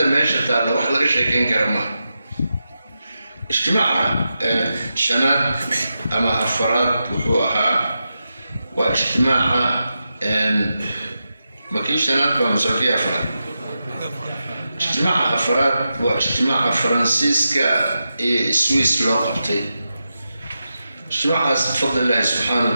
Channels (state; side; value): inverted; both; correlation -0.89